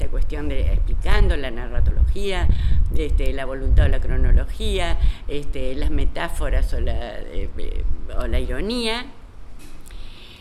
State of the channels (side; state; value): both; identical; correlation 1.00